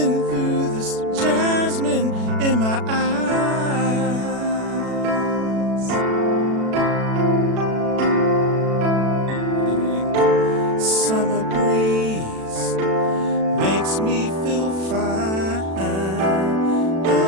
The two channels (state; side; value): late; left; 36 ms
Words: through this jasmine in my eyes. Summer breeze makes me feel fine,